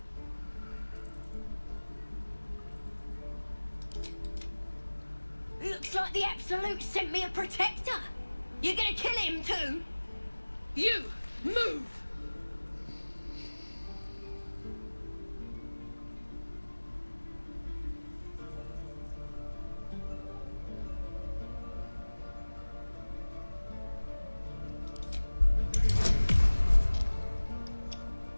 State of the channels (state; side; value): inverted; both; correlation -1.00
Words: Looks like the Absolute sent me a protector. You're gonna kill him too? You! Move!